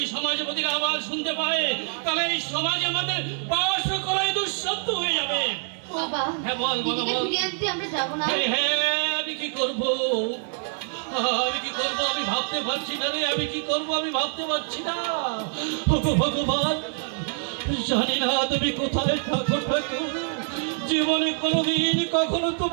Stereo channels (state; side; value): silent; left; digital silence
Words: সমাজপতিরা আবার শুনতে পায় তাহলে এই সমাজ আমাদের বাস করাই দুঃশব্দ হয়ে যাবে। বাবা, হ্যাঁ বল বাবা বল। আমরা যাবো না। হ্যাঁ, আমি কি করবো আমি ভাবতে পারছি না রে, আমি কি করবো আমি ভাবতে পারছি না। ভগবান, জানি না তুমি কোথায় থাকো ঠাকুর। জীবনে কোনোদিন কখনো